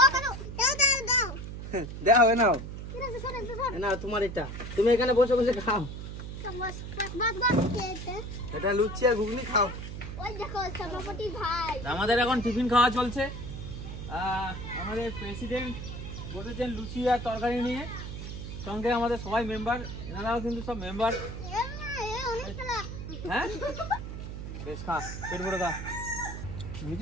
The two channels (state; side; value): noise; right; hum, 8 dB below the sound